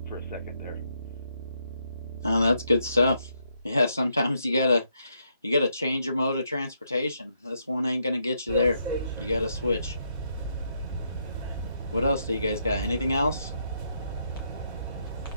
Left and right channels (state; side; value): inverted; both; correlation -0.77